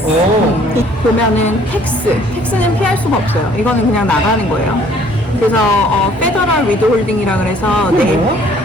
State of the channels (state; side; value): normal; both; correlation 0.58